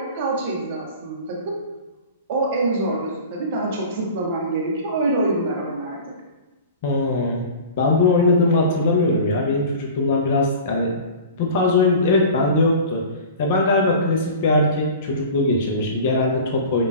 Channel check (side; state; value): both; inverted; correlation -0.38